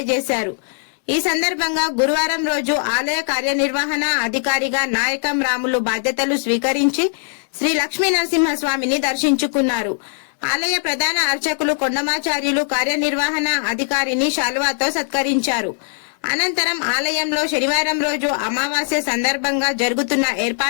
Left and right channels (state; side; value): silent; right; 64 dB below the other